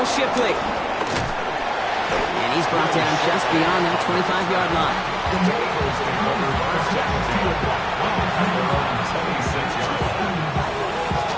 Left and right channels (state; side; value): identical; both; correlation 1.00